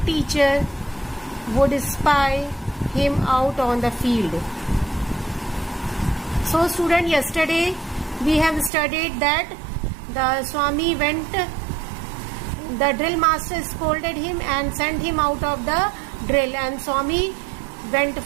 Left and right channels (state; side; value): drops out; left; at 8.7 s